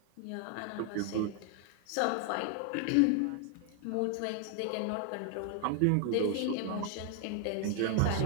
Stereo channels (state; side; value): different; both; correlation 0.00